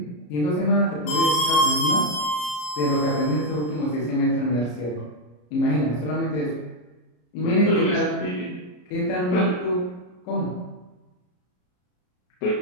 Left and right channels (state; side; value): late; right; 33 ms